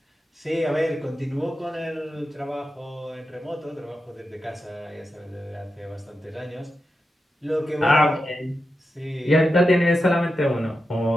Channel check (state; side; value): normal; both; correlation 0.90